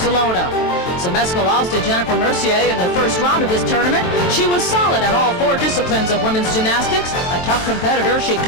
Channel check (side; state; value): right; late; 23 ms